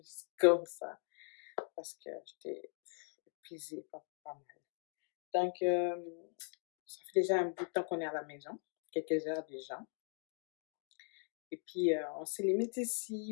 juste comme ça. Parce que j'étais épuisée, pas mal. Donc, ça fait déjà un bout de temps qu'on est à la maison, quelques heures déjà. Et puis, on se limite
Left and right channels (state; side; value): silent; right; 51 dB below the other